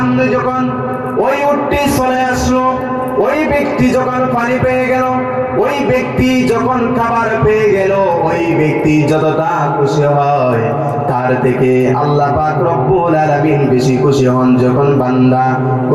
যখন ওই উটটি চলে আসলো, ওই ব্যক্তি যখন পানি পেয়ে গেল, ওই ব্যক্তি যখন খাবার পেয়ে গেল, ওই ব্যক্তি যতটা খুশি হয় তার থেকে আল্লাহ পাক রব্বুল আলামিন বেশি খুশি হন যখন বান্দা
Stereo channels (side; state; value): both; identical; correlation 1.00